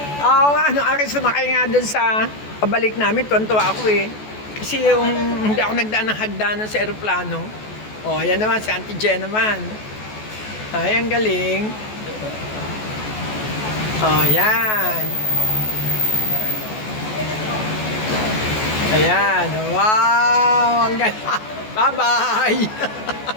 Oo nga, nung aking sumakay nga dun sa pabalik namin, tuwan-tuwa ako eh. Kasi yung hindi ako nagdaan ng hagdanan sa aeroplano. Oh, yan naman, si Auntie Jen naman. Ay, ang galing. Oh, yan. Ayan, wow, ang galing. Bye-bye.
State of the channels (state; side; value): late; right; 14 ms